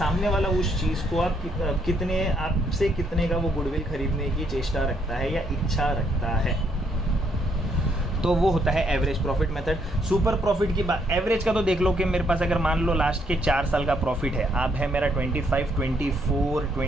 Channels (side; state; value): both; normal; correlation 0.72